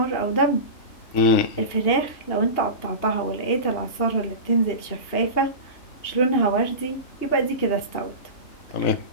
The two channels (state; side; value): late; right; 2.8 ms